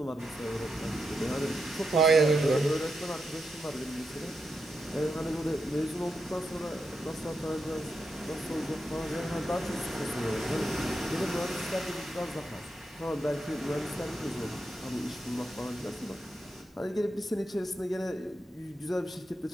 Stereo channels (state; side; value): normal; both; correlation 0.85